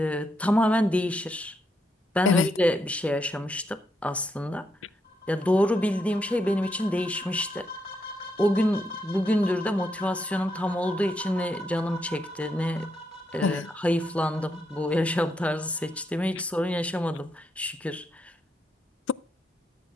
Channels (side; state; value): both; normal; correlation 0.79